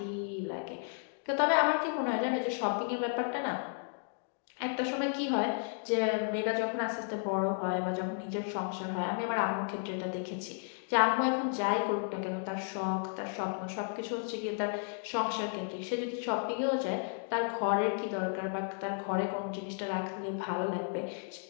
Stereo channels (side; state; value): right; silent; 55 dB below the other